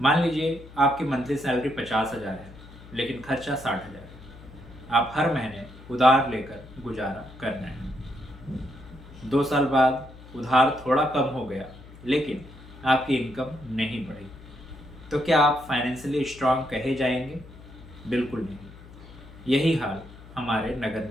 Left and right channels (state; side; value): noise; left; hum, 19 dB below the sound